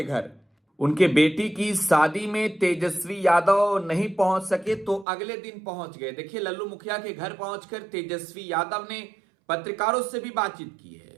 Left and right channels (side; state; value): left; drops out; at 5.1 s